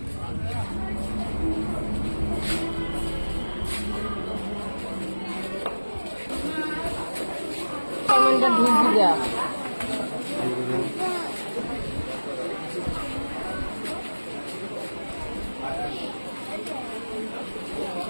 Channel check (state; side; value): inverted; both; correlation -1.00